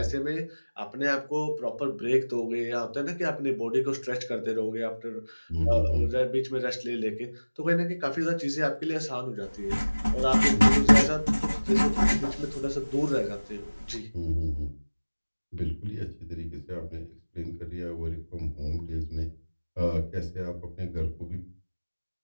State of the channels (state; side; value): inverted; both; correlation -1.00